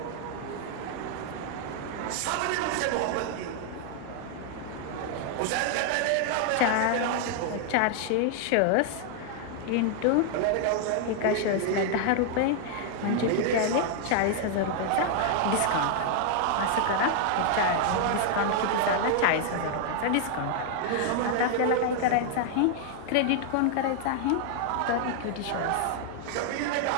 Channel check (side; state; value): both; different; correlation 0.00